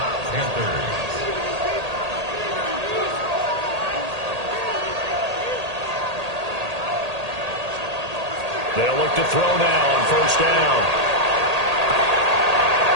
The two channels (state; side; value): late; left; 1.8 ms